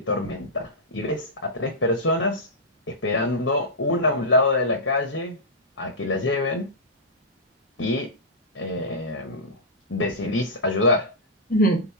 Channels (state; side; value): normal; both; correlation -0.13